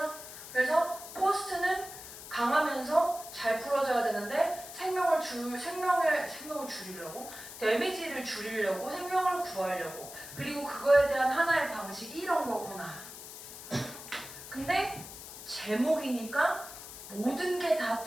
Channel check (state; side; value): noise; left; hiss, 13 dB below the sound